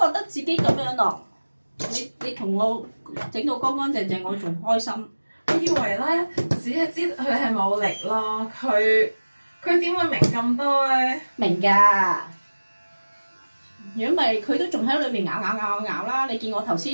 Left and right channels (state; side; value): inverted; both; correlation -1.00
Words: 覺得自己咁樣咯。你同我整到乾乾淨淨，我仲開心。我以為咧，只係知佢係冇力咯，佢點會明咁多咧？明㗎。如果唔係，佢都仲喺裏面咬啦。你見我頭